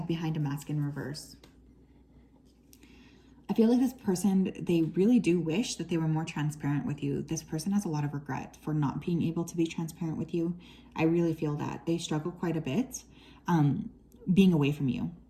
behind a mask in reverse. I feel like this person, they really do wish that they were more transparent with you. This person has a lot of regret for not being able to be transparent with you. I really feel that. They struggle quite a bit being away from you.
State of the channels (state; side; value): identical; both; correlation 1.00